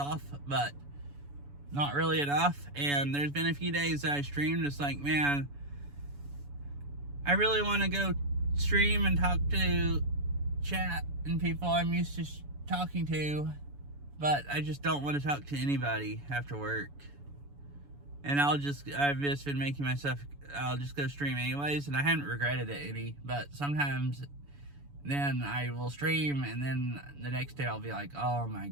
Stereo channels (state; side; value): late; left; 7.0 ms